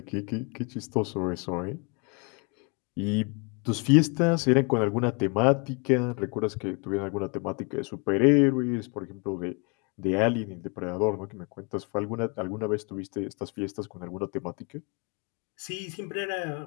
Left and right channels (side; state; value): right; quieter; 33.1 dB